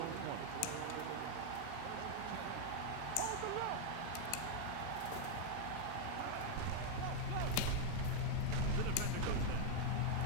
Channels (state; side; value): different; both; correlation 0.00